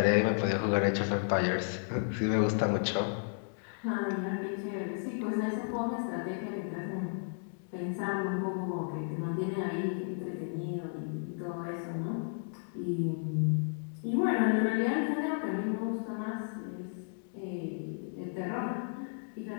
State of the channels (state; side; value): silent; right; digital silence